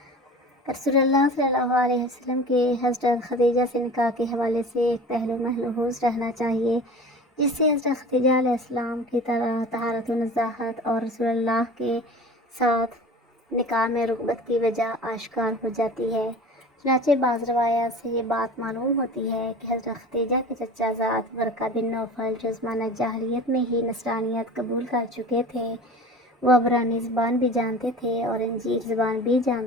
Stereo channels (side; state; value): both; normal; correlation 0.38